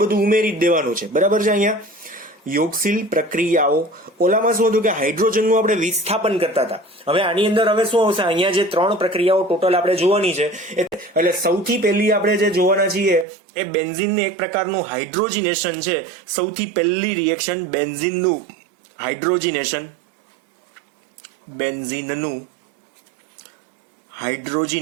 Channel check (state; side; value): drops out; left; at 13.2 s